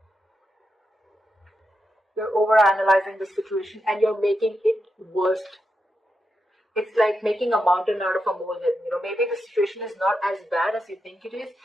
You're overanalyzing the situation and you're making it worse. It's like making a mountain out of a molehill. You know, maybe the situation is not as bad as you think it is,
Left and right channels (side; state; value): both; normal; correlation 0.86